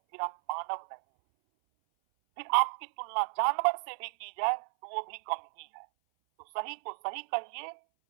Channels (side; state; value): left; silent; 56 dB below the other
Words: फिर आप मानव नहीं, फिर आपकी तुलना जानवर से भी की जाए तो वो भी कम ही है। तो सही को सही कहिए